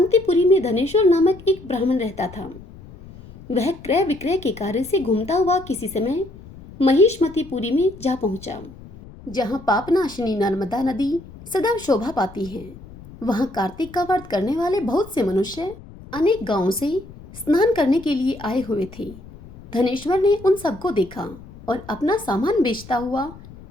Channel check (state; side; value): noise; left; rumble, 18 dB below the sound